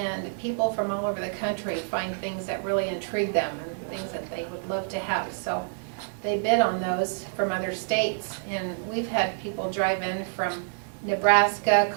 people from all over the country find things that really intrigue them and things that they would love to have. So they bid on those from other states. And we've had people drive in from Nebraska,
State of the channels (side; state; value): left; silent; digital silence